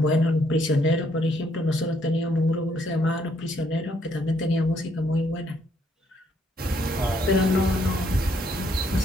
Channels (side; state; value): both; normal; correlation 0.70